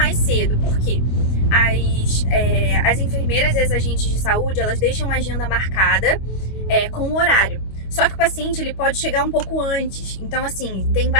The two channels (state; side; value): late; right; 25 ms